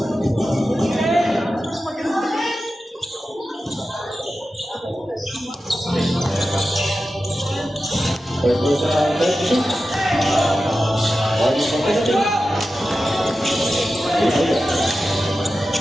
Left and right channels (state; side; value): normal; both; correlation 0.93